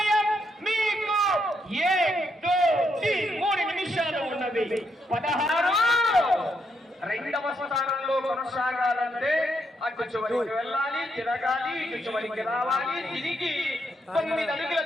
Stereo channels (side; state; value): both; normal; correlation 0.78